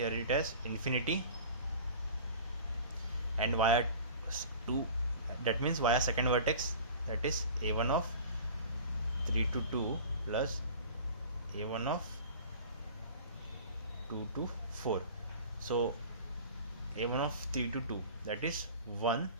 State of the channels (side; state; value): both; inverted; correlation -0.41